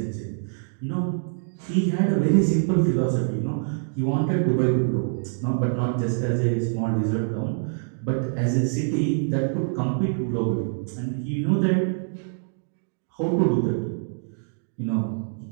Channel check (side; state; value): left; silent; digital silence